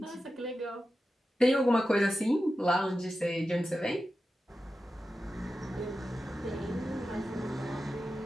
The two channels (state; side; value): normal; both; correlation 0.92